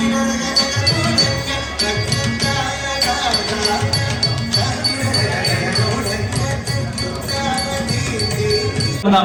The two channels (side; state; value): both; identical; correlation 1.00